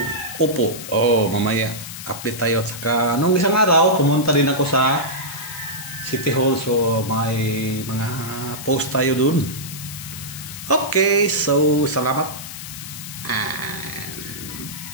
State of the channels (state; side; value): noise; left; hiss, 11 dB below the sound